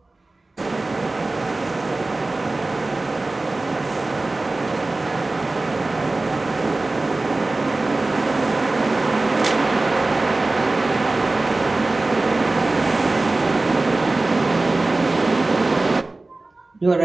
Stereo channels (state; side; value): quieter; left; 3.1 dB